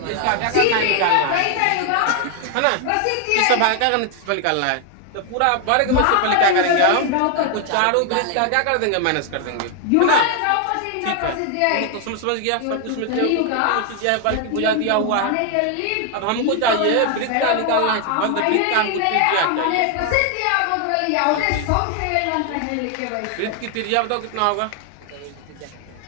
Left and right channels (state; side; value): different; both; correlation 0.00